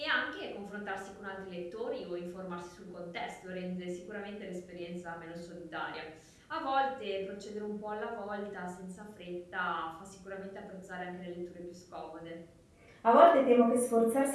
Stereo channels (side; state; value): both; identical; correlation 1.00